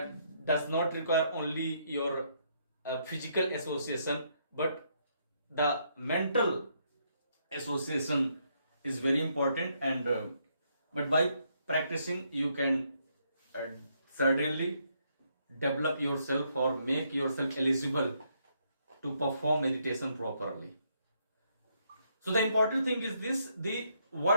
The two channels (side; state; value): both; inverted; correlation -0.74